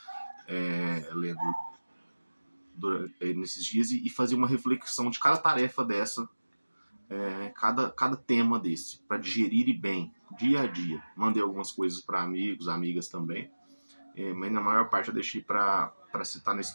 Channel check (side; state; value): both; inverted; correlation -1.00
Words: lendo nesses dias, e fazia uma reflexão de cada tarefa dessa, cada tema desse, para digerir bem, dia a dia. Mandei algumas coisas para amigos, amigas também, mas na maior parte eu deixei para citar